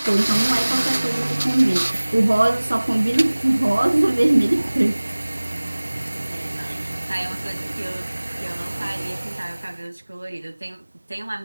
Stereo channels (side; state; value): both; inverted; correlation -1.00